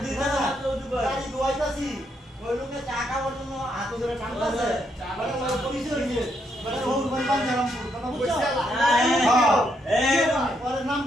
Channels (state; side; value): normal; both; correlation 0.77